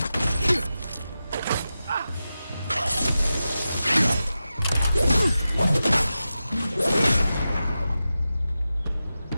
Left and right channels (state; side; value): inverted; both; correlation -0.92